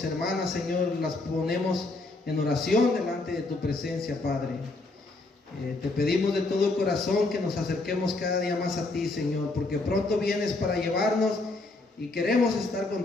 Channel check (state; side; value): quieter; right; 3.2 dB